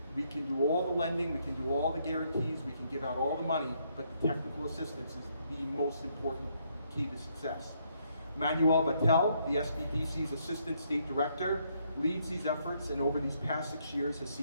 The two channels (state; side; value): inverted; both; correlation -0.73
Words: We can do all the lending, we can do all the guarantees, we can give out all the money, but the technical assistance is the most important key to success. Manuel Vattel, the SBDC's Assistant State Director, leads these efforts and over these past 6 years has